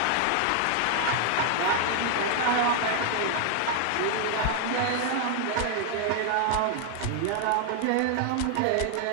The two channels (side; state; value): both; different; correlation 0.00